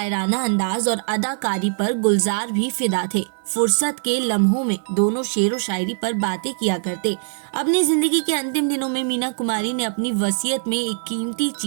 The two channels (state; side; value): silent; left; 61 dB below the other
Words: अंदाज और अदाकारी पर गुलजार भी फिदा थे। फुर्सत के लम्हों में दोनों शेरो शायरी पर बातें किया करते। अपनी जिंदगी के अंतिम दिनों में मीना कुमारी ने अपनी वसीयत में एक कीमती